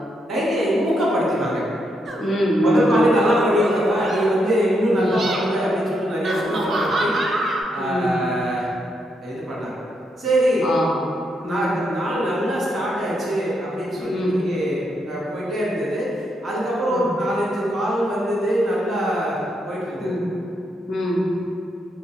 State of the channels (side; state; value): both; normal; correlation 0.79